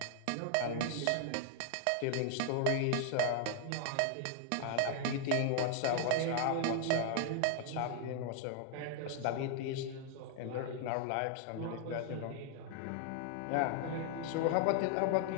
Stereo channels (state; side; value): different; both; correlation 0.00